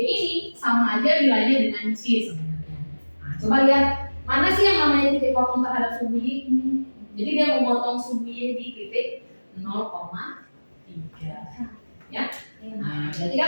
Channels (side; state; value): both; inverted; correlation -1.00